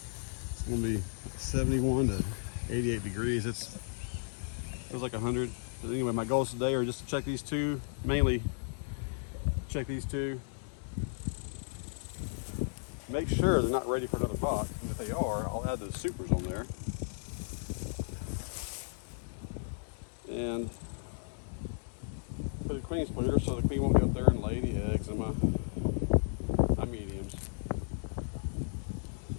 It's gonna be 71 to 88 degrees. It feels like 100. But anyway, my goals today are just to check these two, mainly check these two. Make sure they're not ready for another pot. And if they are, I'll add those supers on there. And put a queen splitter so the queen won't get up there and lay any eggs in my mediums.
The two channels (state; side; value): silent; right; 55 dB below the other